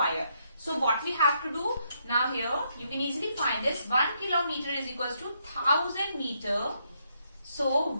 So what we have to do now here, you can easily find this. 1 kilometer is equals to 1000 meter. So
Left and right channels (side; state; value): both; inverted; correlation -0.76